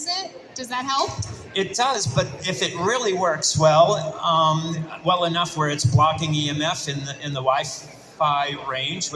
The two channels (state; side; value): identical; both; correlation 1.00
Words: it, does that help? It does, but if it really works well, well enough where it's blocking EMF in the Wi-Fi range,